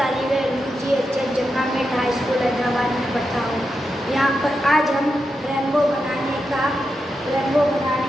इल्म GHH जंगामेट हाई स्कूल हैदराबाद में पढ़ता हूँ। यहाँ पर आज हम रेनबो बनाने का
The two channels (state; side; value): normal; both; correlation 0.87